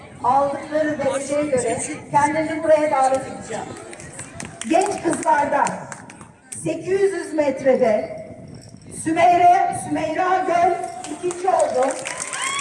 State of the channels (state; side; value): identical; both; correlation 1.00